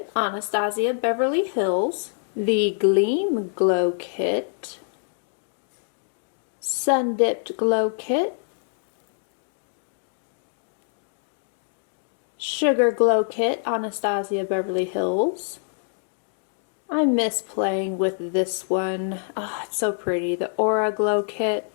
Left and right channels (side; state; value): right; silent; digital silence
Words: Anastasia Beverly Hills, the Gleam Glow Kit, Sun Dipped Glow Kit, Sugar Glow Kit, Anastasia Beverly Hills. I miss playing with this one. Oh, it's so pretty. The Aura Glow